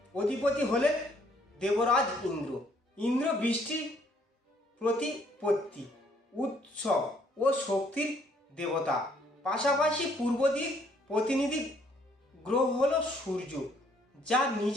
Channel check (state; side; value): normal; both; correlation 0.65